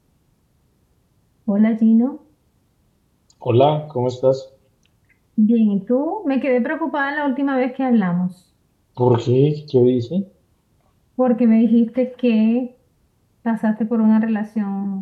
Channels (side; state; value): both; identical; correlation 1.00